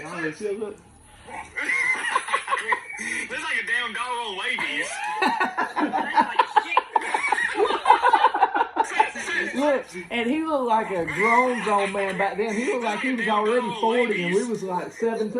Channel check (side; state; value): both; identical; correlation 1.00